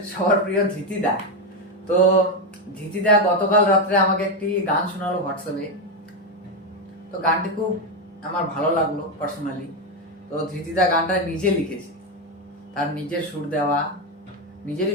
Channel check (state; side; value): normal; both; correlation 0.08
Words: সবার প্রিয় ধৃতিদা। তো ধৃতিদা গতকাল রাত্রে আমাকে একটি গান শোনালো হোয়াটসঅ্যাপে। তো গানটি খুব আমার ভালো লাগলো পার্সোনালি। তো ধৃতিদা গানটা নিজে লিখেছে, তার নিজের সুর দেওয়া,